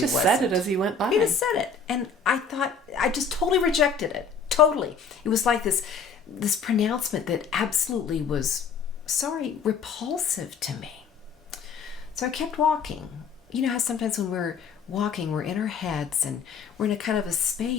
said it as he went by. He just said it. And I thought, I just totally rejected it. Totally. It was like this pronouncement that absolutely was, repulsive to me. So I kept walking. You know how sometimes when we're walking, we're in our heads and we're in a kind of a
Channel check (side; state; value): right; quieter; 5.3 dB